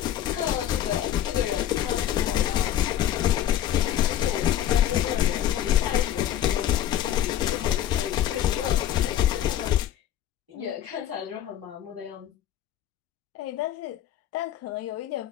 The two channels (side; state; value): right; quieter; 11.4 dB